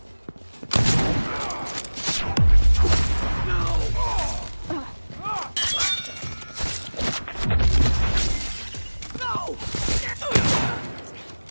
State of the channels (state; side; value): inverted; both; correlation -1.00